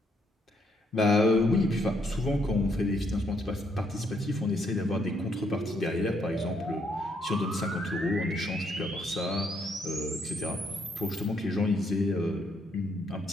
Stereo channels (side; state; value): both; normal; correlation 0.73